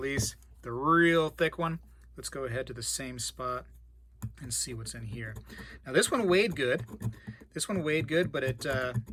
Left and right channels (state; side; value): identical; both; correlation 1.00